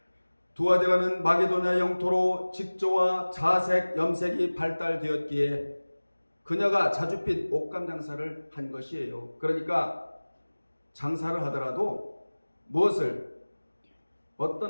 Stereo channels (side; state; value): both; inverted; correlation -1.00